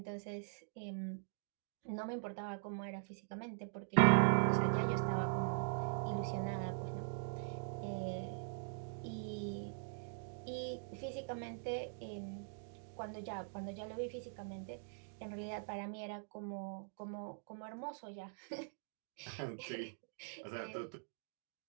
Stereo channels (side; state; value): left; silent; digital silence